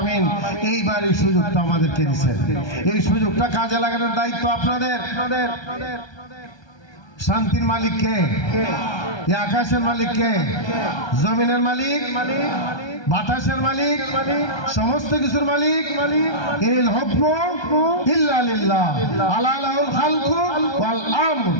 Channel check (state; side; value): late; right; 1.3 ms